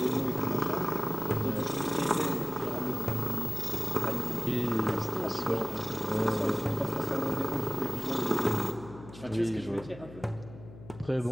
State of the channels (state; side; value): noise; left; hum, 16 dB below the sound